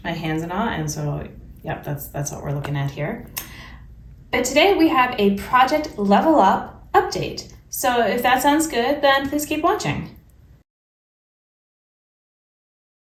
my hands and all, and so yep, that's what we're looking at here. But today we have a Project Level Up update. So if that sounds good, then please keep watching.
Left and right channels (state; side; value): identical; both; correlation 1.00